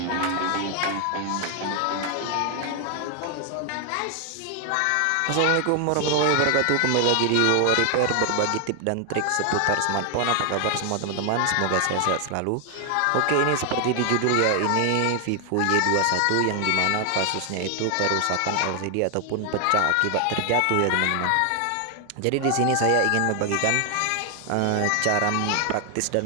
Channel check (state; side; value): different; both; correlation 0.00